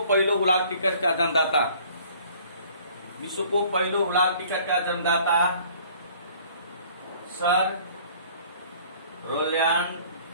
पहिलो हुलाक टिकटका जन्मदाता, विश्वको पहिलो हुलाक टिकटका जन्मदाता सर रोल्यान्ड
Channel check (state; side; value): inverted; both; correlation -0.54